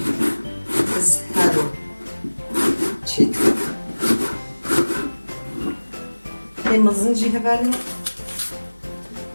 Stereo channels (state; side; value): inverted; both; correlation -1.00